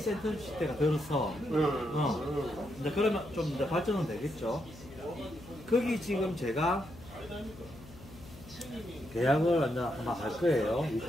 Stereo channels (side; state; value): left; noise; hum, 18 dB below the sound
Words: 들어서 이제 그러면 좀 이제 발전은 되겠죠. 거기 지금 제가 계약을 이제 아마 할 거예요.